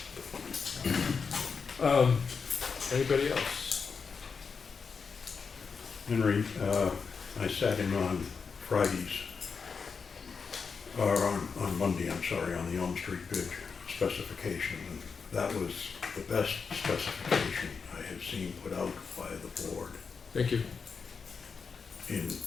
right now. Anybody else? Henry, I sat in on Fridays, or on Monday, I'm sorry, on the Elm Street Bridge specification, and that was the best specification I have seen put out by the board Thank you. in,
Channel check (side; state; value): right; quieter; 5.5 dB